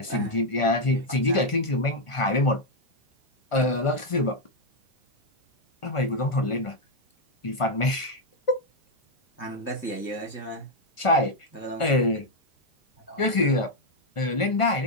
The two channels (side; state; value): right; late; 1.5 ms